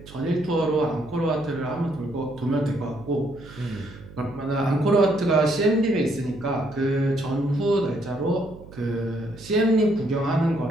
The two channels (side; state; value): right; noise; hum, 18 dB below the sound